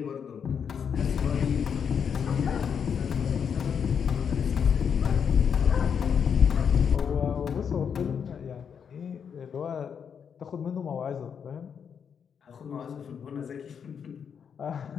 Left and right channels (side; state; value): right; quieter; 7.2 dB